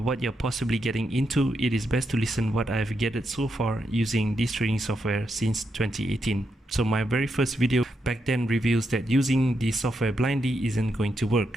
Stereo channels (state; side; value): normal; both; correlation 0.83